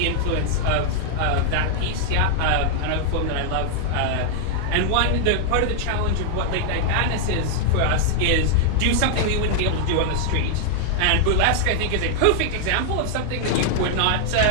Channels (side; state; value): both; different; correlation 0.00